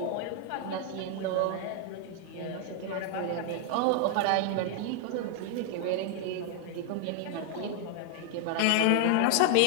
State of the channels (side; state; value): both; different; correlation 0.00